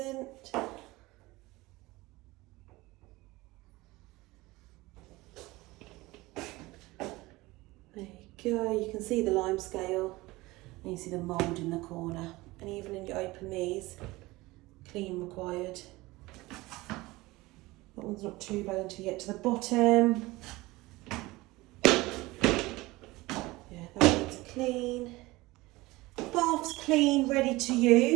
There you go, you can see the lime scale and you see the mould in the corner. And even when you open these, clean required. That one's not too bad until you get to the bottom. Yeah, that one's clean. Bath's clean, ready to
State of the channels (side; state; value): left; quieter; 20.6 dB